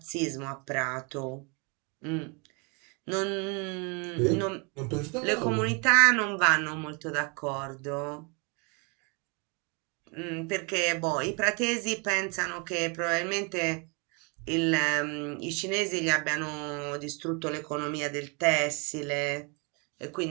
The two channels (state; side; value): quieter; left; 32.8 dB